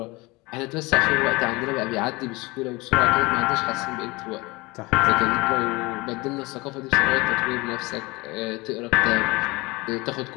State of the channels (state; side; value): quieter; right; 23.9 dB